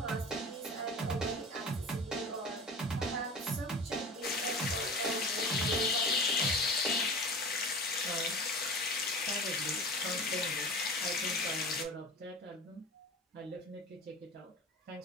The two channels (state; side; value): normal; both; correlation 0.35